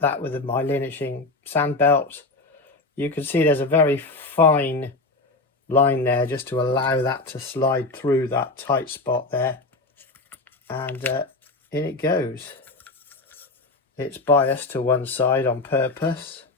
that with my linishing sand belt. You can see there's a very fine line there just to allow that to slide through that tight spot there, and in it goes. It's biased to one side on purpose,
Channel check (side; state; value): right; quieter; 3.3 dB